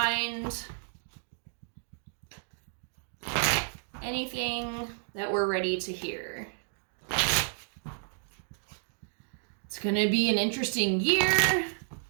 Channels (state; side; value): silent; left; digital silence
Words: anything that we're ready to hear. It's gonna be an interesting year.